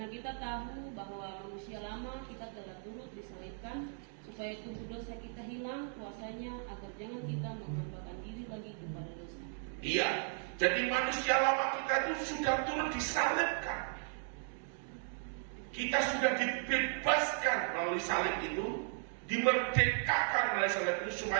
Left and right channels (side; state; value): left; silent; 54 dB below the other